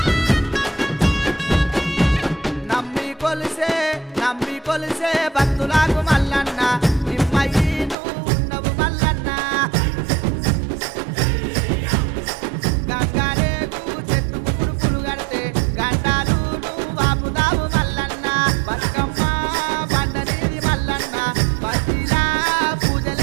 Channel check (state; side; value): drops out; left; at 8.0 s